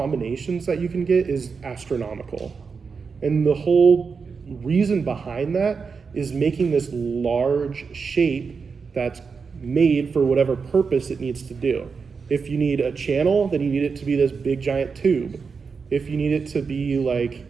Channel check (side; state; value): left; quieter; 5.3 dB